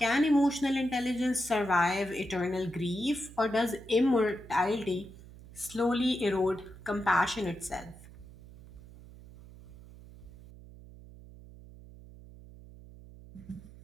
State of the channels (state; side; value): noise; right; hum, 18 dB below the sound